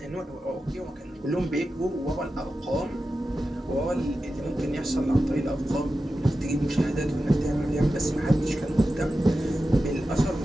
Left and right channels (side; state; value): both; normal; correlation 0.92